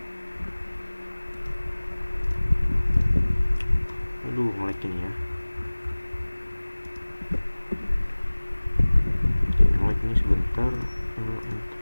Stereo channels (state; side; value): inverted; both; correlation -1.00